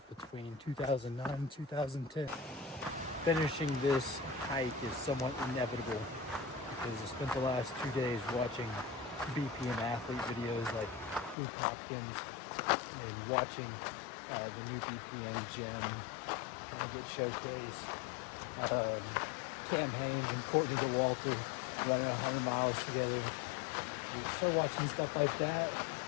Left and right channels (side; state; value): right; drops out; at 11.4 s